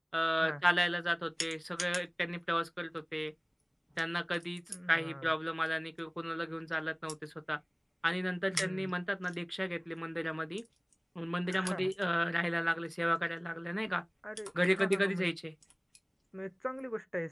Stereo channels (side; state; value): both; identical; correlation 1.00